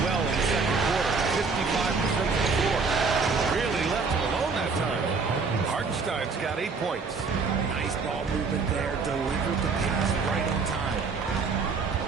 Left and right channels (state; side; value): quieter; left; 4.7 dB